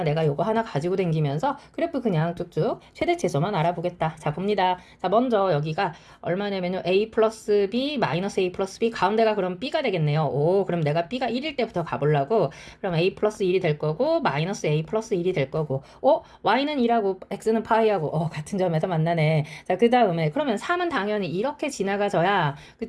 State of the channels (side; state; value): both; identical; correlation 1.00